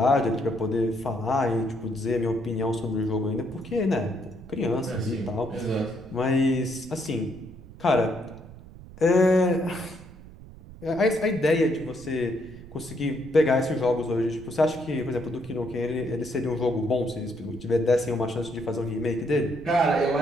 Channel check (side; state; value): right; noise; rumble, 17 dB below the sound